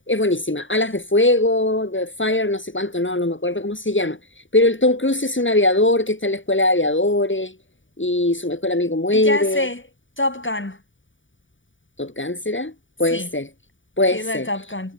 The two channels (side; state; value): right; late; 0.56 ms